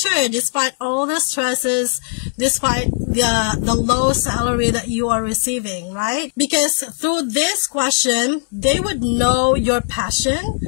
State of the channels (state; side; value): silent; right; 67 dB below the other